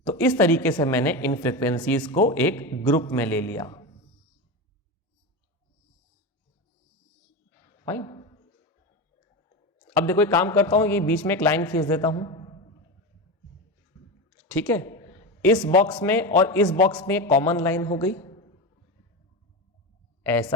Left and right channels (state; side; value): normal; both; correlation 0.20